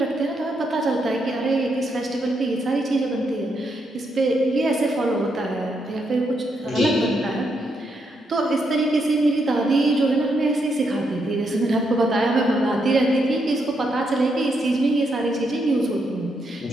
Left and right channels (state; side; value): normal; both; correlation 0.79